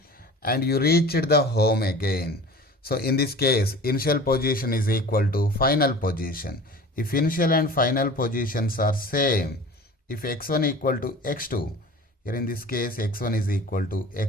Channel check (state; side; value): normal; both; correlation 0.40